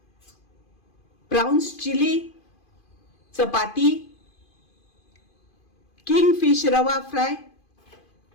प्राउन्स चिली, चपाती, किंग फिश रवा फ्राय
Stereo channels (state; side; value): late; right; 2.5 ms